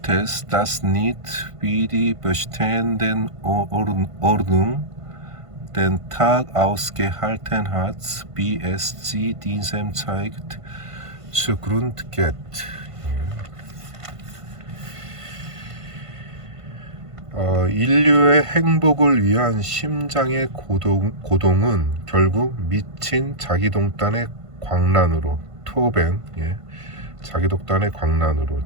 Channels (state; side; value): late; left; 1.5 ms